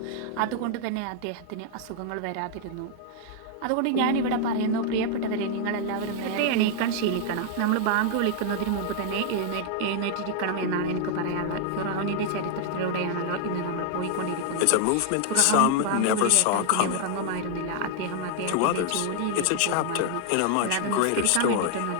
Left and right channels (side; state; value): both; different; correlation 0.00